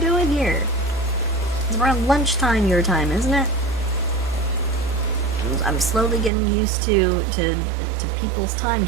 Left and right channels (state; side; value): drops out; left; at 6.3 s